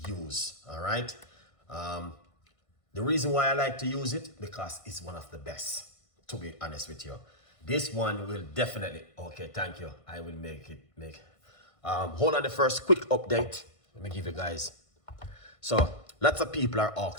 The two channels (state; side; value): late; right; 1.5 ms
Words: use. All right. The reason why I like to use it, because it's one of the best, to be honest with you. This one will definitely, okay, thank you. I will make. Hold on the first quick update. Let me give you guys. So lots of people are